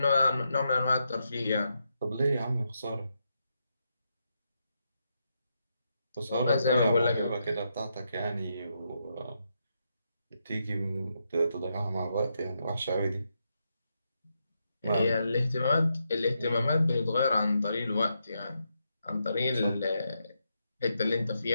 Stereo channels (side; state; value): both; inverted; correlation -0.82